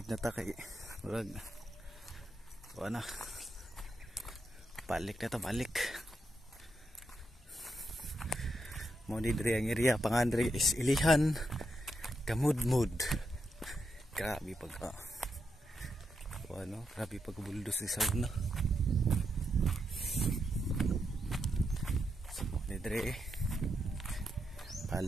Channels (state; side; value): normal; both; correlation 0.83